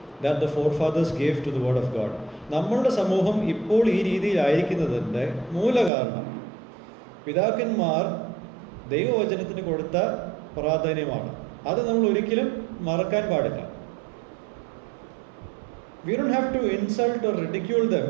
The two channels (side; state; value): left; drops out; at 5.9 s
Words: that the forefathers gave to the word of God. നമ്മളുടെ സമൂഹം ഇപ്പോൾ ഈ രീതിയിലായിരിക്കുന്നതിൻ്റെ മൂലകാരണം പിതാക്കന്മാർ ദൈവവചനത്തിന് കൊടുത്ത പ്രാധാന്യമാണ്. അത് നമ്മൾ ഒരിക്കലും മറക്കാൻ പാടില്ല. We don't have to insult or ridicule them